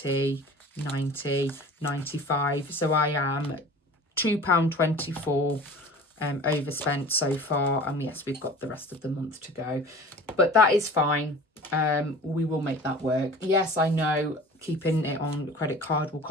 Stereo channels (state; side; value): normal; both; correlation 0.41